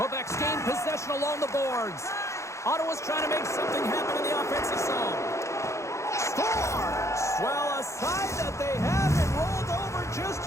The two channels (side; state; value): right; late; 0.14 ms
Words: gained possession along the boards. Ottawa's trying to make something happen in the offensive zone. Scores! Well, a side that they haven't rolled over just